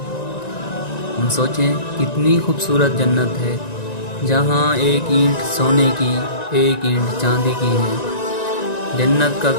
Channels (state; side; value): late; right; 1.9 ms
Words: ہم سوچیں کتنی خوبصورت جنت ہے، جہاں ایک اینٹ سونے کی، ایک اینٹ چاندی کی ہے، جنت کا